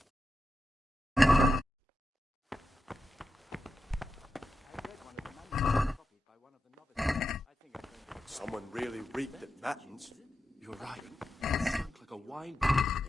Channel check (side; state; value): both; normal; correlation 0.89